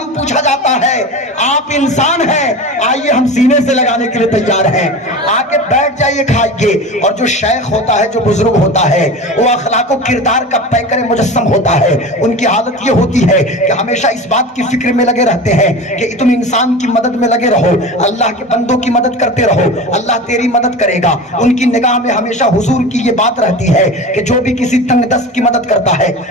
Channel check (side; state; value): both; normal; correlation 0.31